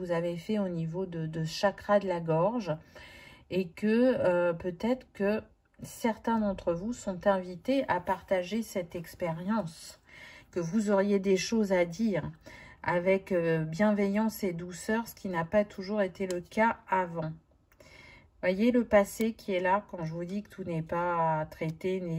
avez fait au niveau de chakra de la gorge et que peut-être que certains d'entre vous sont invités à partager cette expérience, que vous auriez des choses à dire avec bienveillance et douceur, ce qui n'a pas toujours été le cas avant. Voyez le passé qui est là quand je vous dis que tout n'est pas traité,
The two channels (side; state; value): both; identical; correlation 1.00